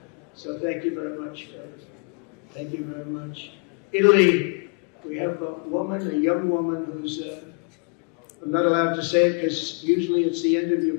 So thank you very much. Thank you very much. Italy, we have a young woman who's, I'm not allowed to say it because usually it's the end of your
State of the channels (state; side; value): quieter; right; 37.2 dB